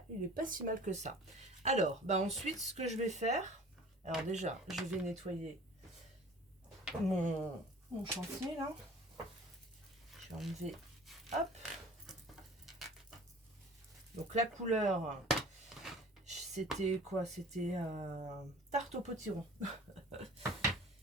il est pas si mal que ça. Alors, bah ensuite, ce que je vais faire... Alors déjà, je vais nettoyer mon chantier, là. Je vais enlever... Hop. Donc la couleur, c'était quoi? C'était tarte au potiron.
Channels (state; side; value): normal; both; correlation 0.45